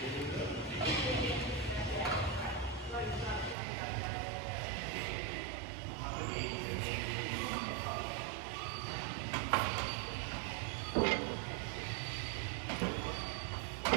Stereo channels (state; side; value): drops out; left; at 3.6 s